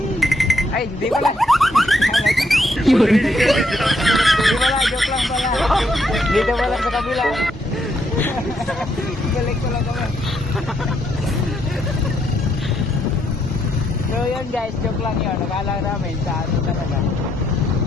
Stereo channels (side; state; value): both; normal; correlation 0.75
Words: Ay, hindi pala. Hindi pala, joke lang pala. Dito pala sa kabila. Balik ko lang kami. So yun guys, joke lang yun. Nakala namin sa ano talaga.